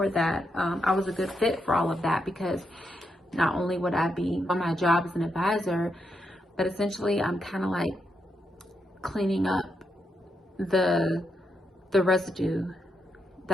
that I was a good fit for all of that, because not only would I be on my job as an advisor, but essentially I'm kind of like cleaning up the residue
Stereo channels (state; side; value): normal; both; correlation 0.82